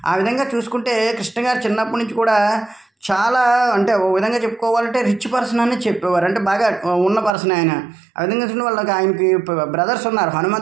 ఆ విధంగా చూసుకుంటే కృష్ణ గారు చిన్నప్పటి నుంచి కూడా చాలా, అంటే ఓ విధంగా చెప్పుకోవాలంటే రిచ్ పర్సన్ అని చెప్పేవారు, అంటే బాగా ఉన్న పర్సన్ ఆయన. ఆ విధంగా చూడండి వాళ్ళకి ఆయనకి బ్రదర్స్ ఉన్నారు,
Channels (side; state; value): left; drops out; at 7.4 s